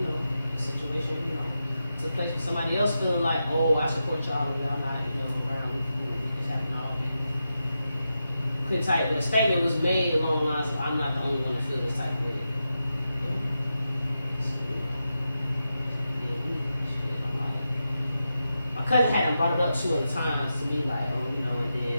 the situation, took place with somebody else feeling like, oh, I support y'all and y'all not, around with this happened all. Couldn't type, but a statement was made along the lines of, I'm not the only one to feel this type of way. So, I'm like, my cousin hadn't brought it up 2 other times to me, like, oh, and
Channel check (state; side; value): inverted; both; correlation -0.89